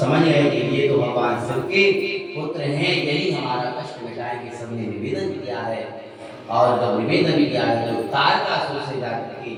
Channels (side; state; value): both; identical; correlation 1.00